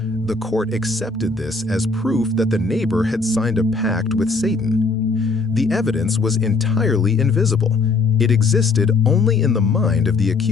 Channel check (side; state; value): right; quieter; 4.0 dB